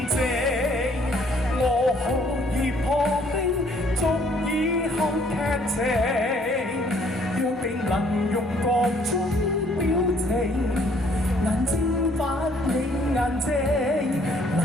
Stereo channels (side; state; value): both; normal; correlation 0.63